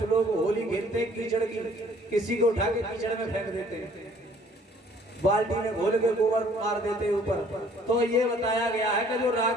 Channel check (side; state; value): both; normal; correlation 0.58